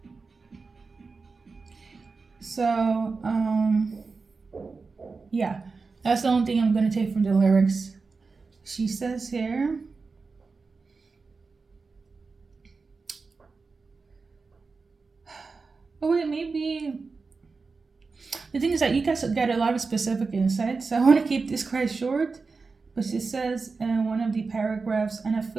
so yeah, that's the only thing I'm gonna take from the lyrics. She says here, oh wait, maybe the thing is that you guys get a lot of specific insights, so I want to keep this quite short. But she says in one of the paragraphs, and I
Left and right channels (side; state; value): left; quieter; 4.4 dB